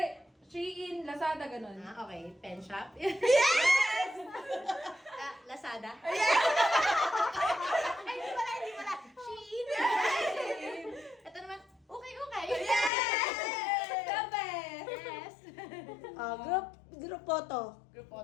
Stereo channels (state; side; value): drops out; right; at 12.9 s